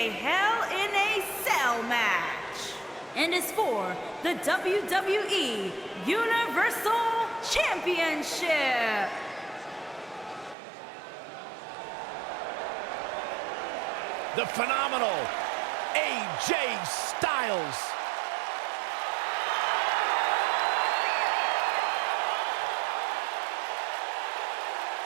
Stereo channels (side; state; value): left; drops out; at 10.6 s